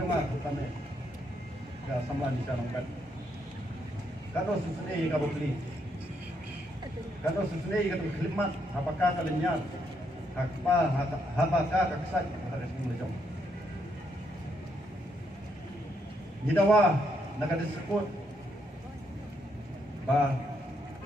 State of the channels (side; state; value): both; normal; correlation 0.76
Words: utame ka samlan di sana kan kado susune ka bokli kado susune ka khilmat apakah kalinya hakpa habaka ka ksat ka sini lejong nidawa nakadisebut ba